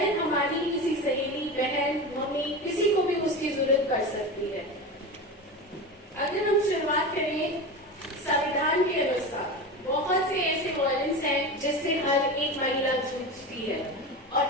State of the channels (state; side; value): normal; both; correlation 0.26